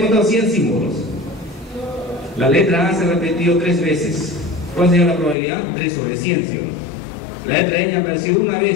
100 símbolos. La letra A se ha repetido 3 veces. ¿Cuál sería la probabilidad? 3 sobre 100, ¿sí o no? La letra N ha aparecido una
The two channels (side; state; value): right; drops out; at 5.4 s